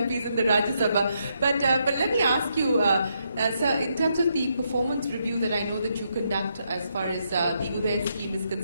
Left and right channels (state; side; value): inverted; both; correlation -0.78